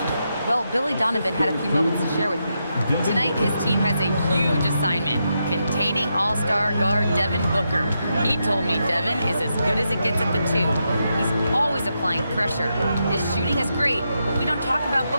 Well, Billy Donovan had a few moments to share with me. Tonight, his team has a huge assignment, containing all-star guard Devin Booker. He told me Devin is as good as it gets at the 2. He's always applying pressure. His shooting is great, but we don't talk about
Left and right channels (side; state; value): both; inverted; correlation -0.84